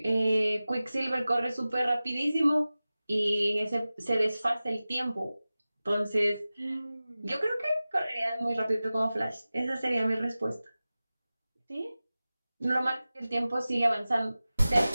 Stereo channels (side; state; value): both; inverted; correlation -0.96